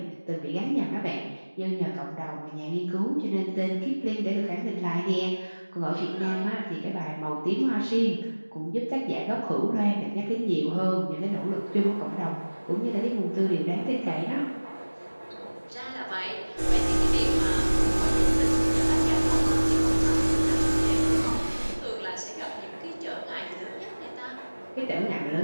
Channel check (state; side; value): inverted; both; correlation -1.00